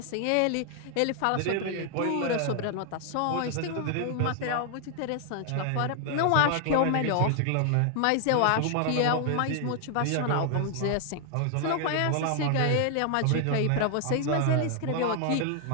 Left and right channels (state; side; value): different; both; correlation 0.00